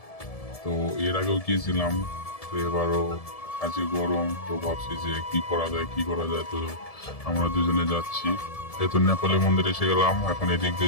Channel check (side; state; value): right; late; 1.7 ms